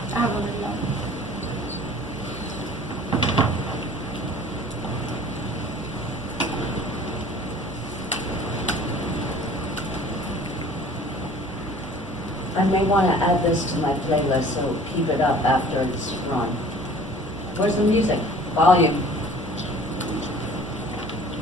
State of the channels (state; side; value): normal; both; correlation 0.49